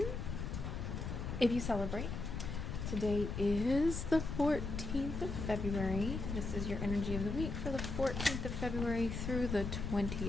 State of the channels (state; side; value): noise; left; rumble, 4 dB below the sound